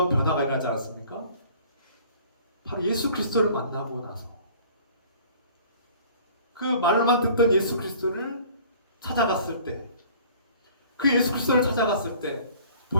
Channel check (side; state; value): both; inverted; correlation -0.50